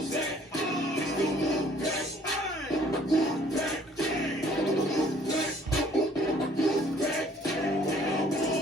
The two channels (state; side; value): normal; both; correlation 0.58